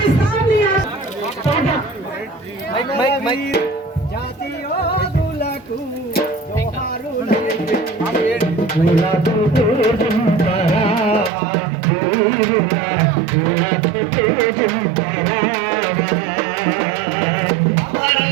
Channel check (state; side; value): drops out; left; at 11.3 s